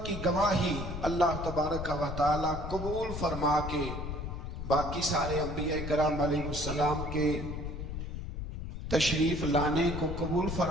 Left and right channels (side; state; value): left; noise; rumble, 6 dB below the sound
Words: کی گواہی اللہ تبارک و تعالیٰ قبول فرما کے باقی سارے انبیاء کرام علیہ السلام کے تشریف لانے کو قبول